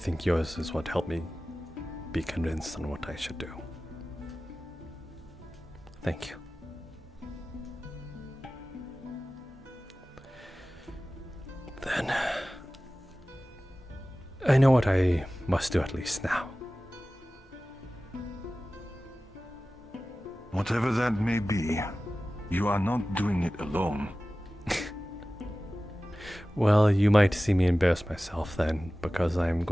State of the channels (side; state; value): both; normal; correlation 0.96